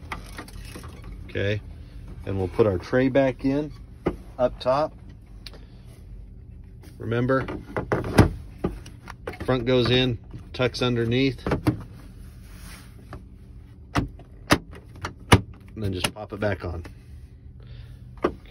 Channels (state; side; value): identical; both; correlation 1.00